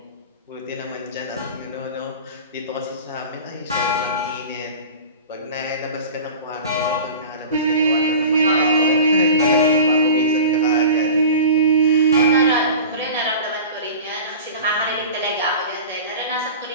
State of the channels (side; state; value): both; inverted; correlation -0.36